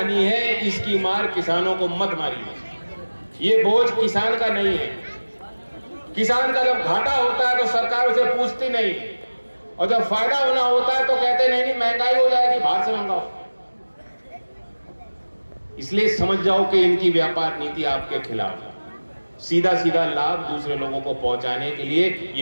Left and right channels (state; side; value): inverted; both; correlation -1.00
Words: है, इसकी मार किसानों को मत मारिए। ये बोझ किसान का नहीं है। किसान का जब घाटा होता है तो सरकार उसे पूछती नहीं, और जब फायदा होना होता है तो कहते नहीं महंगाई हो जाएगी, बाहर से मंगाओ। इसलिए समझ जाओ कि इनकी व्यापार नीति आपके खिलाफ है। सीधा सीधा लाभ दूसरे लोगों को पहुंचाने के लिए